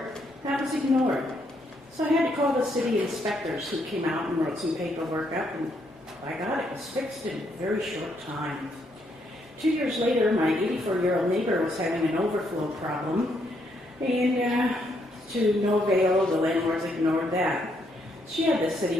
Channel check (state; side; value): normal; both; correlation 0.75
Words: That was ignored. So I had to call the city inspectors who came out and wrote some paperwork up, and by God, it was fixed in a very short time. 2 years later, my 84-year-old neighbor was having an overflow problem, and to no avail, the landlords ignored that. She had the